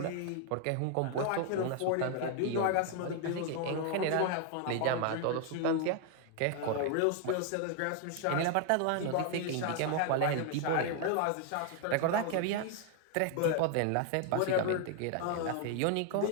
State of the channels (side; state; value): both; different; correlation 0.00